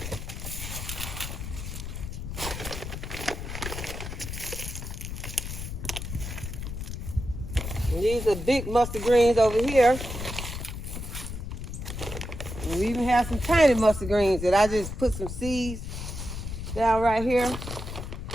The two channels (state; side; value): noise; left; rumble, 7 dB below the sound